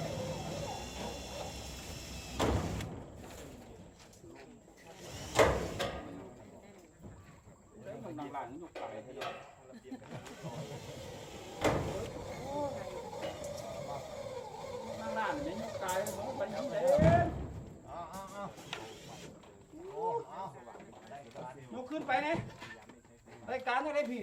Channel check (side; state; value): both; identical; correlation 1.00